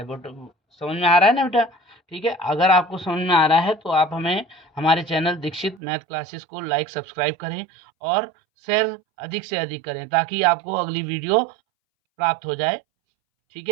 बट समझ में आ रहा है ना बेटा। ठीक है, अगर आपको समझ में आ रहा है तो आप हमें हमारे चैनल दीक्षित मैथ क्लासेस को लाइक सब्सक्राइब करें और शेयर अधिक से अधिक करें, ताकि आपको अगली वीडियो प्राप्त हो जाए। ठीक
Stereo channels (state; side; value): drops out; left; at 5.8 s